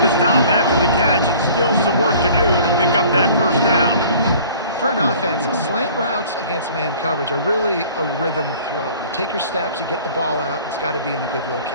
the stop after the catch, and still some work to do to pick up that first down. For an offense, slant routes against man coverage are really a rhythm throw. You take your steps, you get the ball out, it's got to be in a good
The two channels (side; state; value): both; inverted; correlation -0.49